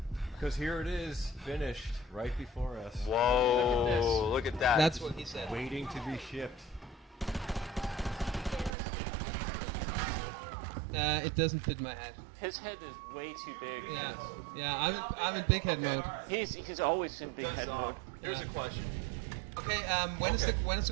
Because here it is, finished, right before us. Whoa, look at that. That's what he said. Waiting to be shipped. It doesn't fit my head. His head is way too big. Yeah. I'm in big head Okay. mode. He's always in big Does head mode. here's a question. Okay. When is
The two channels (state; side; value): drops out; left; at 8.8 s